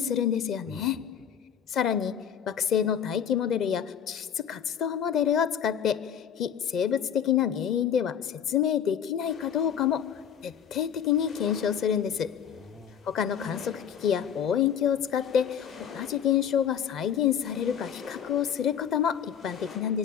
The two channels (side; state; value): right; quieter; 8.5 dB